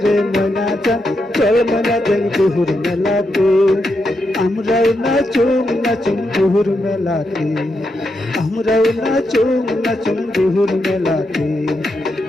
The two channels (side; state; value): both; normal; correlation 0.83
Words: रे मना जान, चल मना जान दुहुर मेलाते, আমরাও নাচুম দুহুর মেলাতে, আমরাও নাচুম দুহুর মেলাতে,